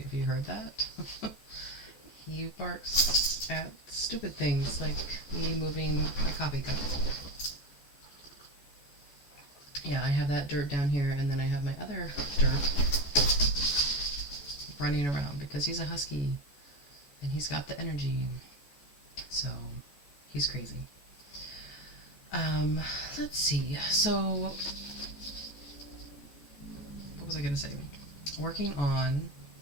if you heard that. He barks at stupid things like me moving my coffee cup. Yeah, I have that dirt down here and then I have my other dirt running around because he's a husky and he's got the energy. So he's crazy. Um, let's see. So what was I going to say? Working on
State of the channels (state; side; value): late; right; 14 ms